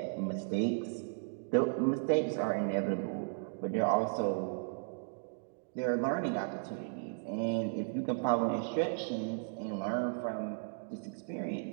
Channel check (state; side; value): silent; left; digital silence